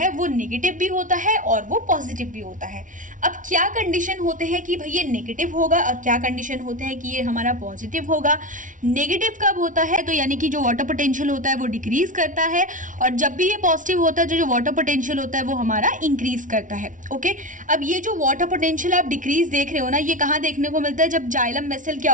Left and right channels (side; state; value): left; late; 0.37 ms